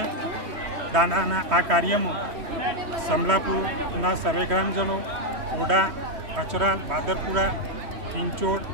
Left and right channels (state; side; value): late; left; 3.1 ms